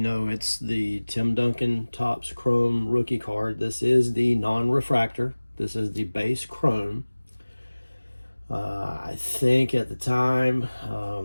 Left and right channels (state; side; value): inverted; both; correlation -1.00